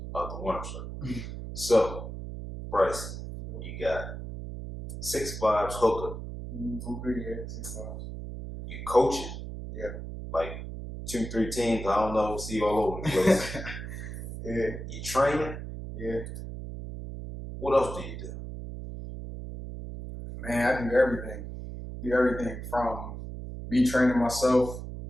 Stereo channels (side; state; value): right; noise; hum, 8 dB below the sound